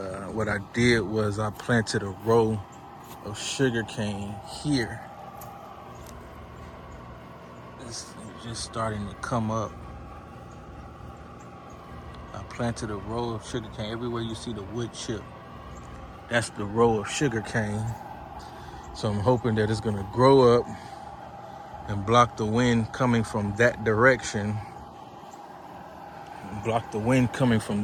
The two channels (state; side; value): identical; both; correlation 1.00